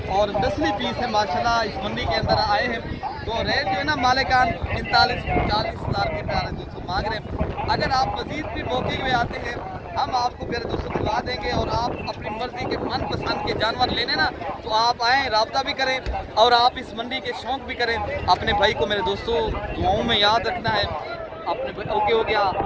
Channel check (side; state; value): both; identical; correlation 1.00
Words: और नस्ली पीस है माशाल्लाह इस मंडी के अंदर आए हैं। तो रेट जो है ना मालिकान 39-40,000 के प्यारे दोस्तों मांग रहे हैं। अगर आप मजीद भी मौके में आते हैं, हम आपको प्यारे दोस्तों दिलवा देंगे और आप अपनी मर्जी के मनपसंद के जानवर लेने ना तो आप आएँ, रब्ता भी करें और आप इस मंडी के शौक भी करें। अपने भाई को मेरे दोस्तों दुआओं में याद रखना है। अपने ओके हो गया,